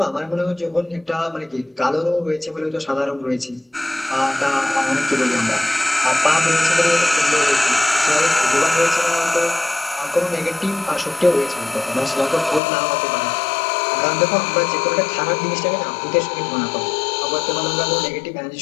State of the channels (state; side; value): drops out; right; at 12.6 s